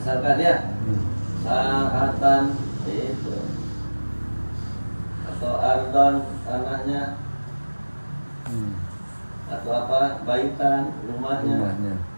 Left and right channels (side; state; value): both; inverted; correlation -1.00